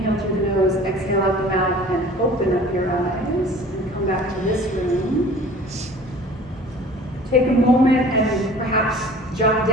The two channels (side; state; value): both; normal; correlation 0.46